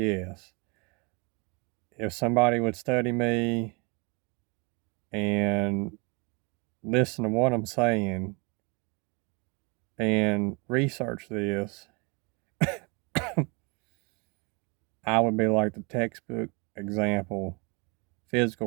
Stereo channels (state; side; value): quieter; left; 30.4 dB